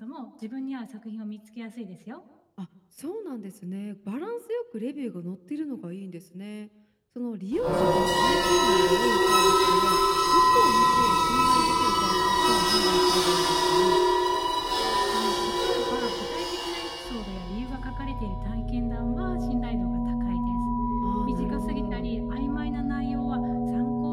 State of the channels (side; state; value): both; identical; correlation 1.00